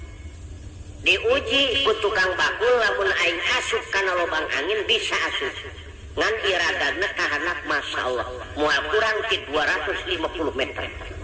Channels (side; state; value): both; identical; correlation 1.00